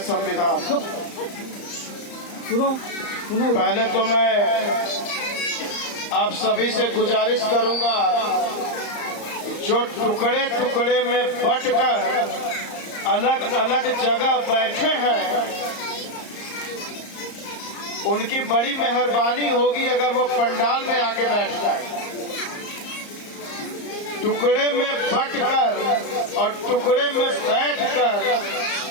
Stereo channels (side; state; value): right; late; 34 ms